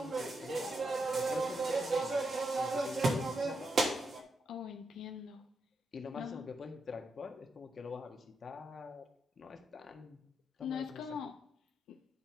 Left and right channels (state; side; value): normal; both; correlation 0.83